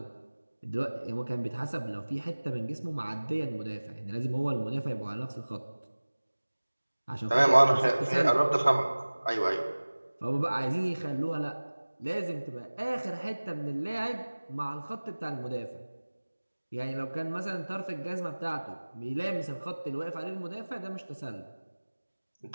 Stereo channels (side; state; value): both; inverted; correlation -1.00